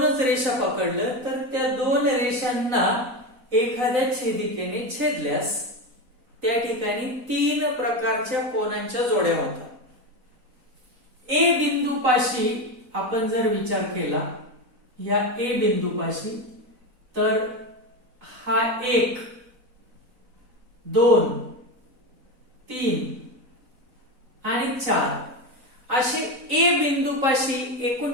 रेषा पकडलं तर त्या दोन रेषांना एखाद्या छेदिकेने छेदल्यास त्या ठिकाणी तीन प्रकारच्या कोनांच्या जोड्या होतात. ए बिंदूपाशी आपण जर विचार केला, या ए बिंदूपाशी, तर हा 1, 2, 3 आणि 4 असे ए बिंदूपाशी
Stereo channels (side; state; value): left; late; 4.0 ms